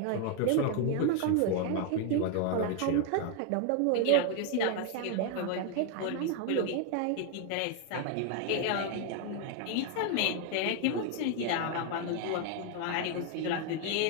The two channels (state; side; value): different; both; correlation 0.01